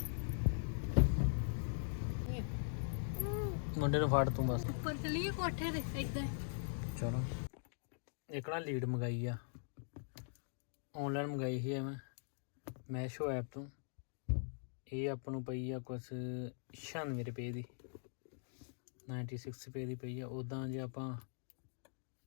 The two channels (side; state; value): right; silent; digital silence